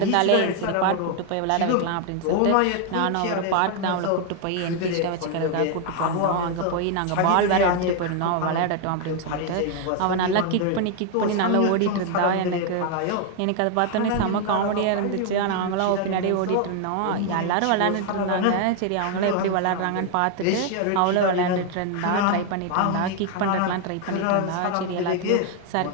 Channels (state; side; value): different; both; correlation 0.00